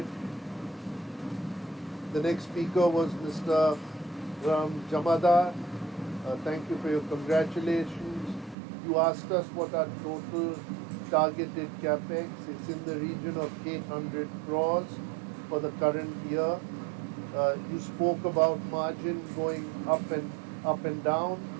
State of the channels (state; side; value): drops out; left; at 8.6 s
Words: The next speaker was Mr. Jamada. Thank you for your congratulations. You asked us what our total targeted capex. It's in the region of 800 crores for the current year. You spoke about margin going up and down.